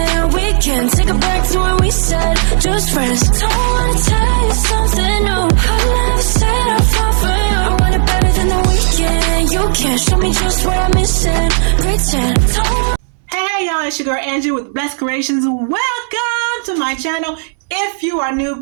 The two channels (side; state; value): left; silent; digital silence